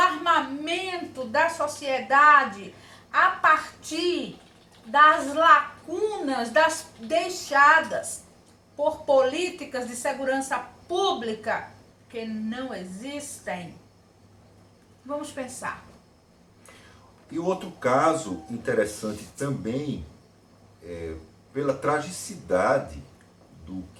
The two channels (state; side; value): identical; both; correlation 1.00